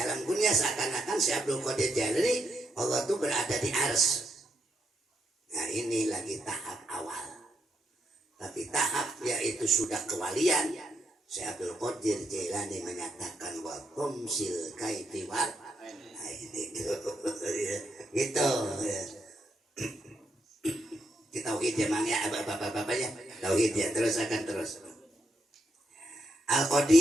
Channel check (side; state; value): both; normal; correlation 0.80